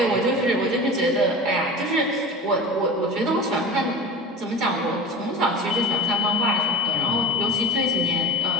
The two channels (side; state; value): both; normal; correlation 0.32